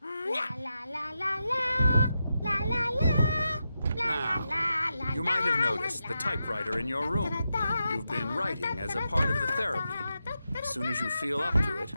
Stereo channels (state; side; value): inverted; both; correlation -0.88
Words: la la la la la Now, you might have noticed the typewriter in your room. You've been writing as a part of the therapy. As soon as you feel up to it,